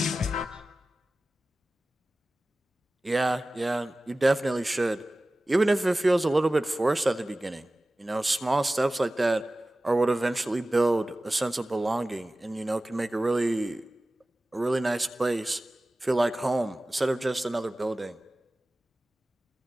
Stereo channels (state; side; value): normal; both; correlation 0.97